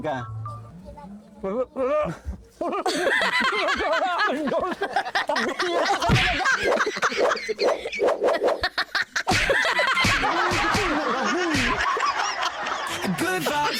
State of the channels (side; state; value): both; identical; correlation 1.00